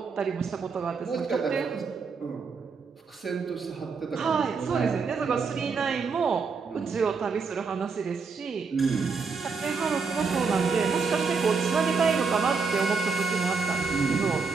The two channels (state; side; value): quieter; left; 5.0 dB